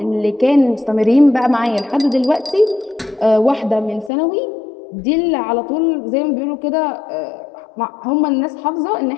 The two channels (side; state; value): right; drops out; at 4.1 s